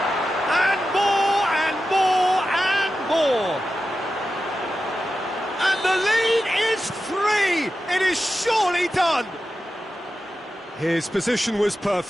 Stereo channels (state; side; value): normal; both; correlation 0.92